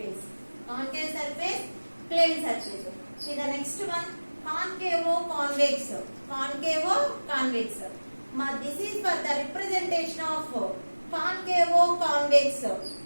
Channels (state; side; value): inverted; both; correlation -1.00